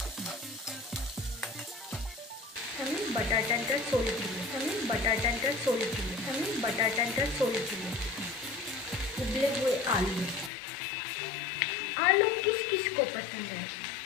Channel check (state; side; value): drops out; right; at 10.5 s